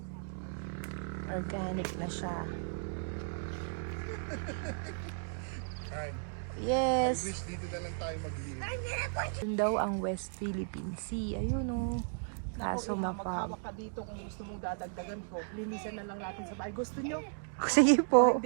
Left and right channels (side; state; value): left; silent; digital silence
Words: Organic na siya. Yes. Dito na lang tayo mag-live. Yun daw ang West Philippine Sea. Ayun o. Kaso mapag. Maghawak ka dito kung gusto mong dadagdagan ko. Linisan na lang natin sa bahay. Gusto nyo? Sige po.